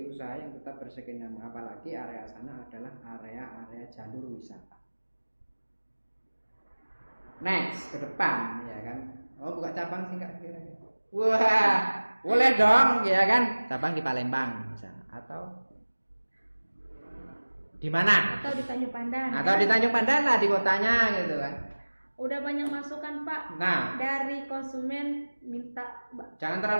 usaha yang tetap berskena, apalagi area sana adalah area jalur wisata. Next ke depan ya kan. Oh buka cabang sih Kak kira-kira. Wah, boleh dong ya kan. Cabang di Palembang misalnya atau di mana? Atau di Tanjung Pandan. Atau di Tanjung Pandan lah di kotanya gitu kan. Udah banyak masukan Pak. Nah, dari konsumen minta jangan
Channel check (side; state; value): both; inverted; correlation -1.00